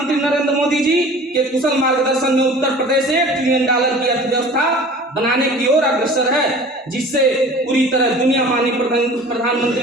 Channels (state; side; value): normal; both; correlation 0.43